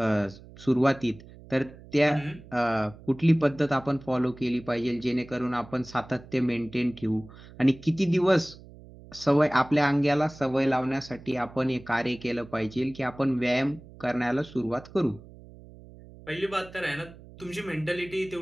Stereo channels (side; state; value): right; noise; hum, 20 dB below the sound